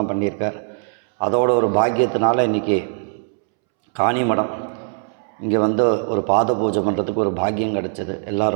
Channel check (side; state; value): left; silent; 65 dB below the other